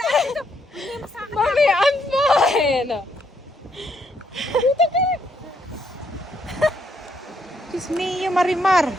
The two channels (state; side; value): normal; both; correlation 0.73